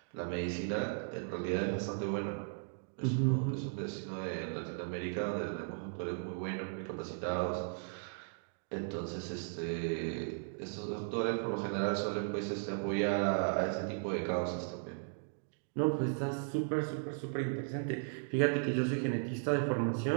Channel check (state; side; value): silent; left; digital silence